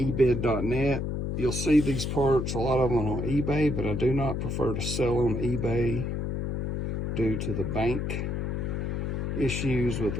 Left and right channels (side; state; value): left; noise; hum, 1 dB below the sound